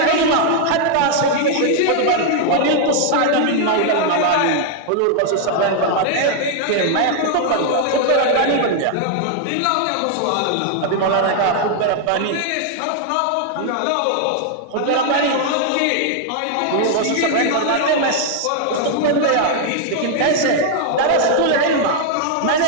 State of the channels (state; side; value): different; both; correlation 0.00